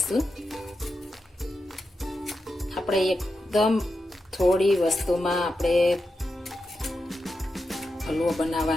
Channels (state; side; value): normal; both; correlation 0.88